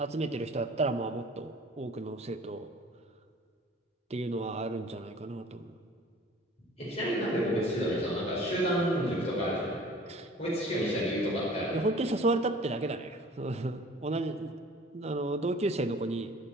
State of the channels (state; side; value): normal; both; correlation 0.48